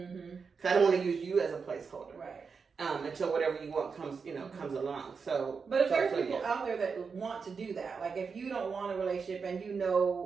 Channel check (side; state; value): left; quieter; 5.4 dB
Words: I don't want to use you as a placeholder. Right. Until whatever you want comes, comes along. So, but if there's people out there that want to do that, like if you don't want a relationship and you